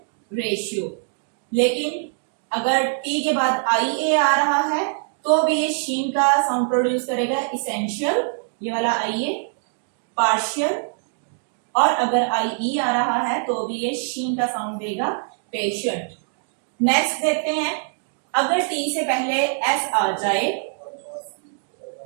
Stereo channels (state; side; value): silent; left; digital silence